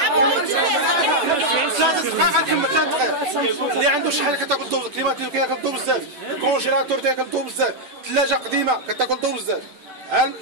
3 دقائق غنكمل 3 دقائق. اللي عنده شي حاجه كتاكل الضوء، الكليماتيزور كياكل الضوء بزاف، الكونجيلاتور تياكل الضوء بزاف، الثلاجه قديمه كتاكل الضوء بزاف. ها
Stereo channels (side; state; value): left; late; 10 ms